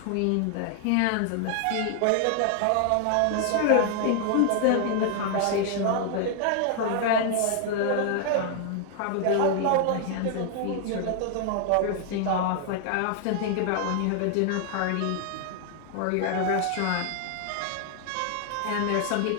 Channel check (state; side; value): different; both; correlation 0.00